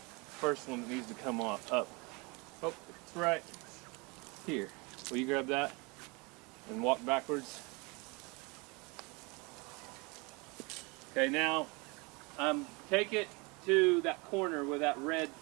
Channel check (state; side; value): quieter; left; 28.2 dB